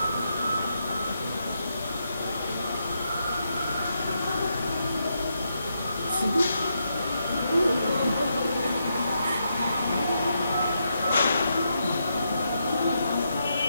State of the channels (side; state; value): both; inverted; correlation -0.81